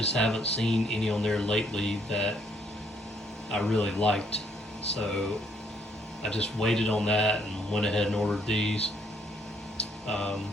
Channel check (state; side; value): normal; both; correlation 0.69